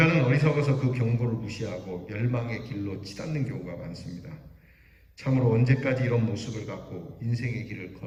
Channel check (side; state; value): both; identical; correlation 1.00